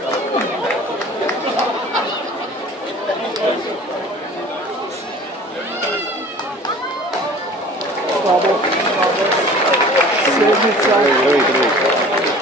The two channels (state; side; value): normal; both; correlation 0.45